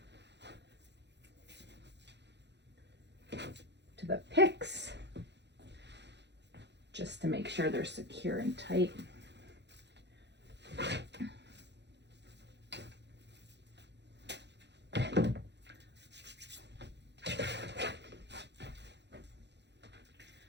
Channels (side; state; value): left; late; 0.50 ms